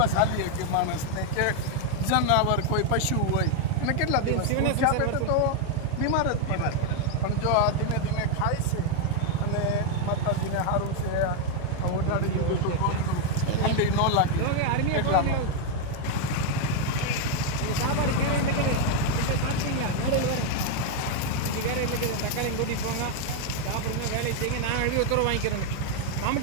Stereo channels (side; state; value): both; different; correlation 0.01